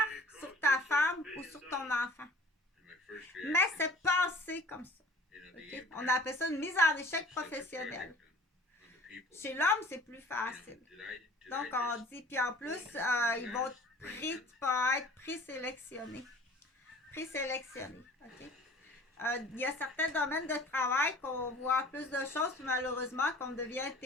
sur ta femme ou sur ton enfant. Mais c'est passé comme ça. Okay? On appelle ça une mise en échec professionnelle. Chez l'homme, c'est plus facile. Donc, on dit, puis en plus, ils vont tu peux être présélectionné. Présélectionné. OK? Il y a certains domaines de travail qu'on voit plus de choses, puis malheureusement, qu'on devient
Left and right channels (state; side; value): normal; both; correlation 0.48